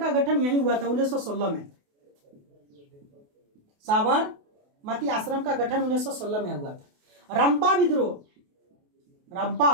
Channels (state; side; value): late; left; 28 ms